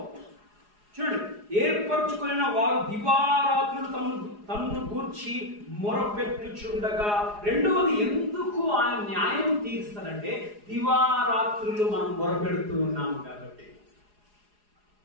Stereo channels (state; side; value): late; left; 4.8 ms